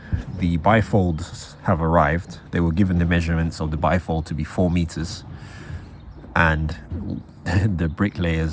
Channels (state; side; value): identical; both; correlation 1.00